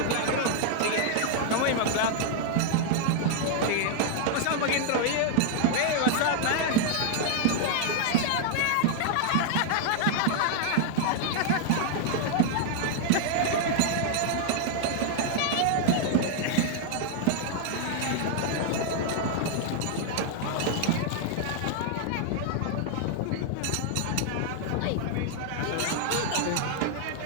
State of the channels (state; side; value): different; both; correlation 0.00